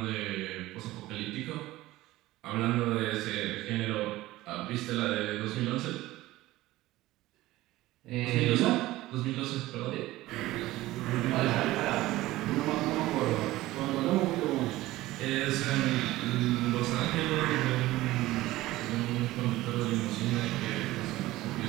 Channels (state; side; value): quieter; left; 17.3 dB